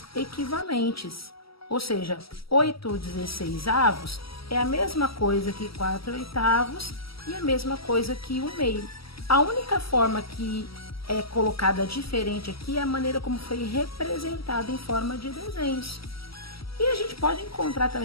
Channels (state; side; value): late; right; 0.75 ms